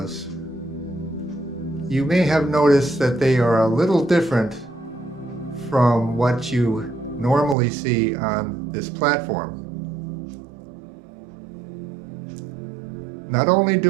you may have noticed that they are a little different from what you normally see on this platform. Not only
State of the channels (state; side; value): drops out; left; at 7.6 s